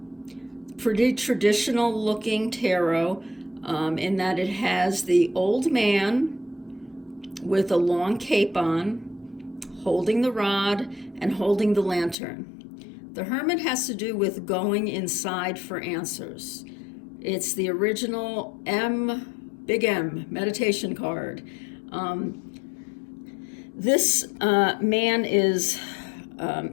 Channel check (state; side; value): drops out; right; at 12.2 s